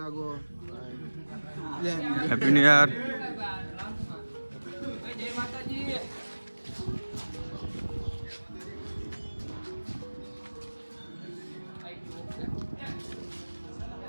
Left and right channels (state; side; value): inverted; both; correlation -1.00